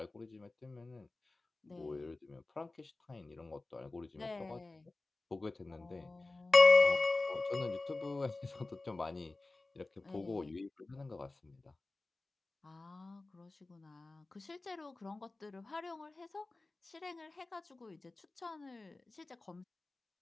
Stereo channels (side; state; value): right; quieter; 3.2 dB